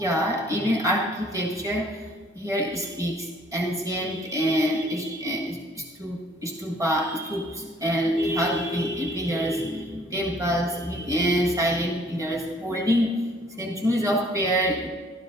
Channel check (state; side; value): normal; both; correlation 0.59